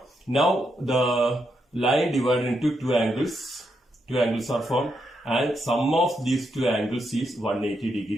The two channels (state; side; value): normal; both; correlation 0.81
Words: Now the line divided into two angles. Two angles are formed and sum of these two angles is 180